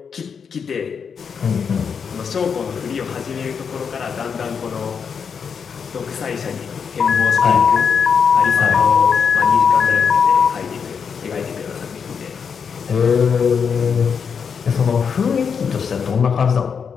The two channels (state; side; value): quieter; right; 6.5 dB